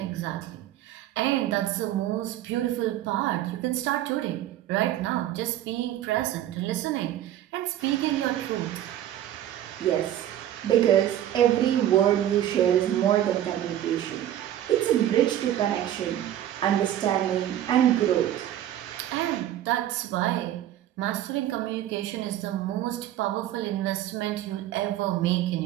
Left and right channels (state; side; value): quieter; left; 12.2 dB